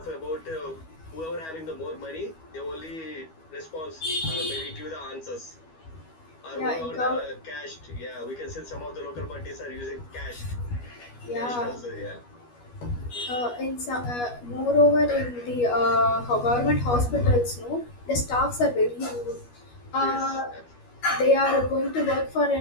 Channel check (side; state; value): right; late; 12 ms